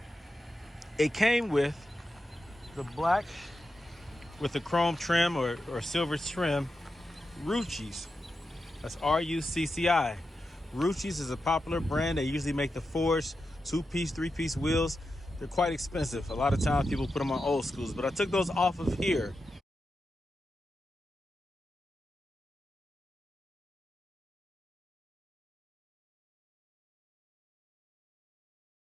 It came with the black with the chrome trim or silver trim Ruccis. That's R-U-C-C-I. Ruccis is a popular brand. They usually make the forged 2-piece, 3-piece wheels. They're quite expensive. A lot of times people put them on old schools, but I took those off of here.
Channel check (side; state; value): both; normal; correlation 0.89